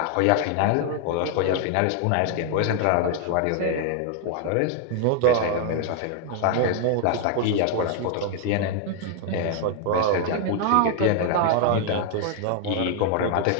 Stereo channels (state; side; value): different; both; correlation 0.00